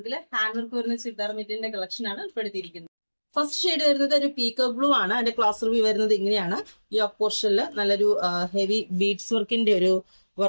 ഹാൻഡ് വർക്ക് വരുന്ന ചുരിദാർ മെറ്റീരിയലിന്റെ കളക്ഷൻ ആണ് ഉൾപ്പെടുത്തിയിരിക്കുന്നത്. ഫസ്റ്റ് ഷെയ്ഡ് വരുന്നത് ഒരു പീക്കോ ബ്ലൂ ആണ്. അതിന്റെ ക്ലാസ് റിവ്യൂ വരുന്നത് ഇങ്ങനെയാണ്. യോക്ക് പോർഷനിൽ നല്ലൊരു ഹെവി ബീഡ്സ് വർക്കിന്റെ ഒരു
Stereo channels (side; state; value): both; inverted; correlation -1.00